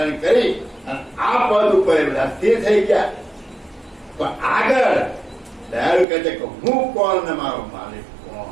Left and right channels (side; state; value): left; drops out; at 6.1 s